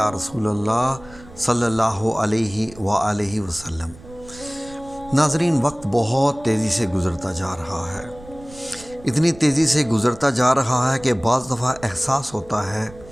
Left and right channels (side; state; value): right; noise; rumble, 20 dB below the sound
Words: رسول اللہ صلی اللہ علیہ وآلہ وسلم۔ ناظرین، وقت بہت تیزی سے گزرتا جا رہا ہے، اتنی تیزی سے گزرتا جا رہا ہے کہ بعض دفعہ احساس ہوتا ہے